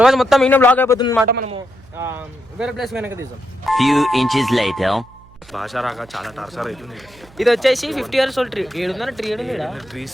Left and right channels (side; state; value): right; noise; hum, 25 dB below the sound